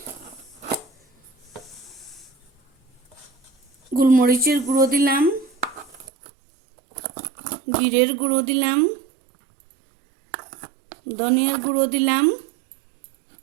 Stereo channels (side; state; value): left; drops out; at 6.1 s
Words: গোলমরিচের গুঁড়ো দিলাম, জিরের গুঁড়ো দিলাম, ধনিয়ার গুঁড়ো দিলাম,